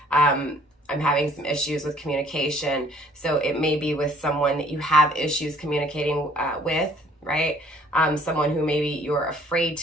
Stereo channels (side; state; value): both; normal; correlation 0.58